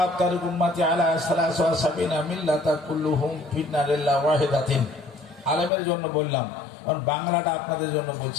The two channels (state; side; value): drops out; right; at 5.7 s